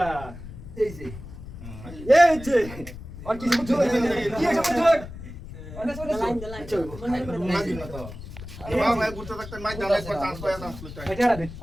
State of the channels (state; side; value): noise; left; rumble, 13 dB below the sound